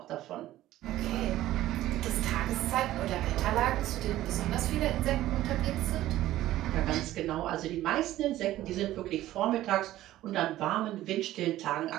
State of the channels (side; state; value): left; quieter; 14.6 dB